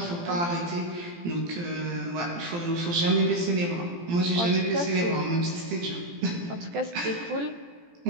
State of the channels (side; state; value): left; late; 17 ms